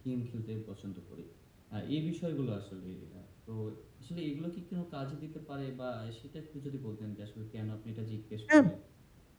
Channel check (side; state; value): both; identical; correlation 1.00